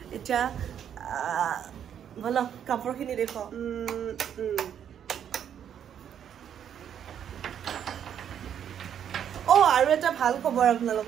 এতিয়া ব'লক কাপোৰখিনি দেখুৱাওঁ আৰু এটা ভাল খবৰ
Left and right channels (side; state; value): left; quieter; 9.1 dB